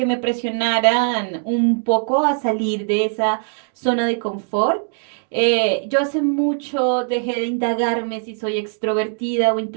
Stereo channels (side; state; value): left; silent; 60 dB below the other